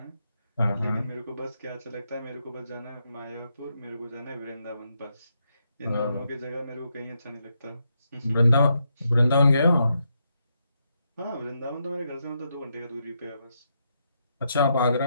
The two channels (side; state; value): both; inverted; correlation -0.80